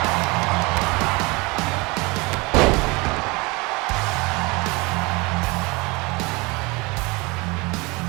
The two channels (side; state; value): left; quieter; 25.8 dB